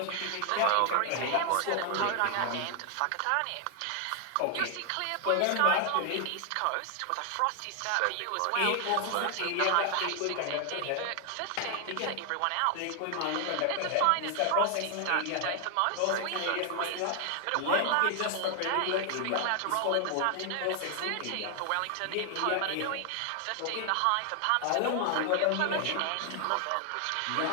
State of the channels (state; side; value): different; both; correlation 0.00